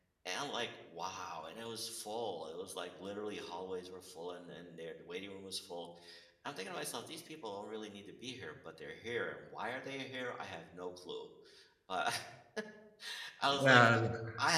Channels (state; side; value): identical; both; correlation 1.00